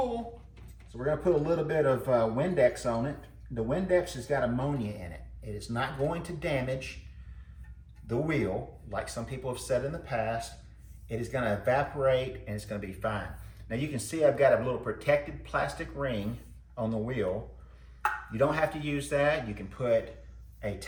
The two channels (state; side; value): identical; both; correlation 1.00